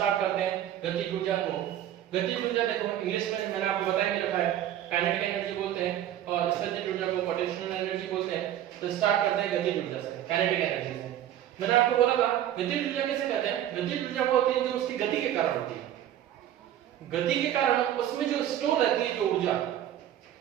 करते हैं गतिज ऊर्जा को। गतिज ऊर्जा देखो इंग्लिश में मैंने आपको बताया भी रखा है, काइनेटिक एनर्जी बोलते हैं और स्थितिज ऊर्जा को पोटेंशियल एनर्जी बोलते हैं। तो स्टार्ट करते हैं गतिज ऊर्जा से, काइनेटिक एनर्जी से। मैंने आपको बोला था गतिज ऊर्जा किसे कहते हैं? गतिज ऊर्जा वो होती है जो उसकी गति के कारण होती है। गति के कारण उसमें जो स्टोर रहती है जो ऊर्जा,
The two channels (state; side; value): quieter; left; 11.7 dB